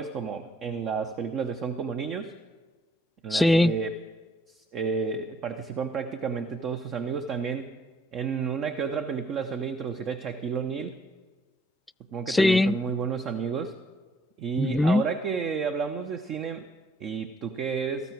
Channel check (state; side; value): normal; both; correlation 0.67